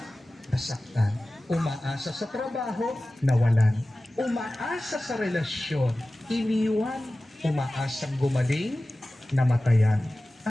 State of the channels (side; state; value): both; normal; correlation 0.96